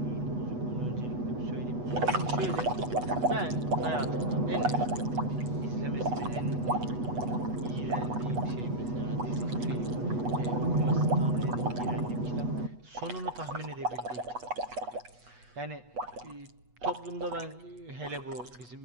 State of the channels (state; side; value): late; left; 8.2 ms